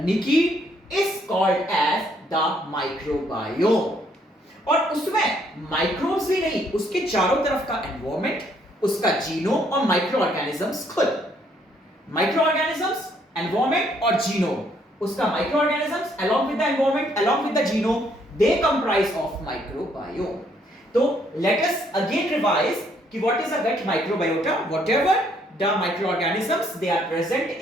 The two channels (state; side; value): normal; both; correlation 0.68